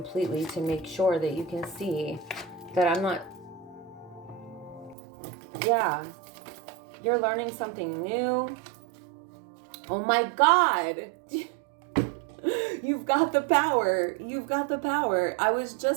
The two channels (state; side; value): drops out; left; at 5.0 s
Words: to make sure that you can see that I'm not, yeah, you're learning something new. Oh my God. You've got the power. You've got the power. I was